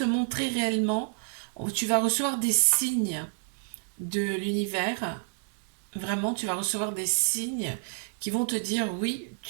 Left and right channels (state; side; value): silent; left; digital silence